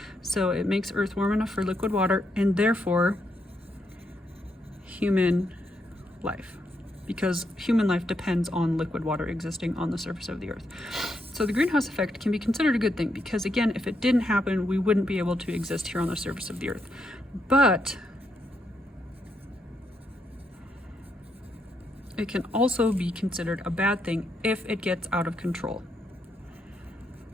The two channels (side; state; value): both; normal; correlation 0.79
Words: So it makes Earth warm enough for liquid water and therefore human life, because human life depends on liquid water existing on the surface of the earth. So the greenhouse effect can be considered a good thing because, again, if it didn't happen, we wouldn't be able to exist here on the surface of the earth. But it can also be considered a bad thing if it gets out of control.